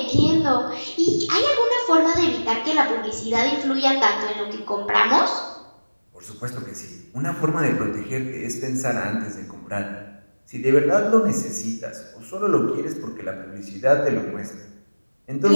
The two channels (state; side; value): inverted; both; correlation -1.00